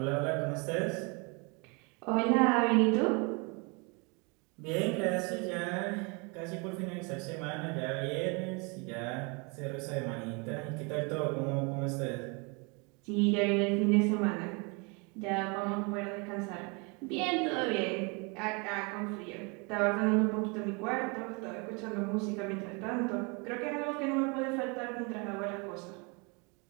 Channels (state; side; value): quieter; left; 31.2 dB